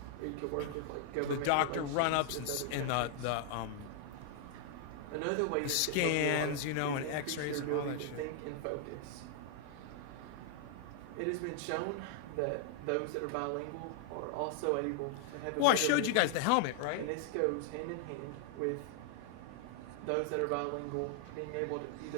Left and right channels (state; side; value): different; both; correlation 0.00